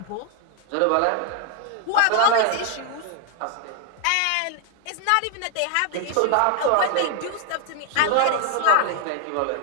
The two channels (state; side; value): different; both; correlation 0.01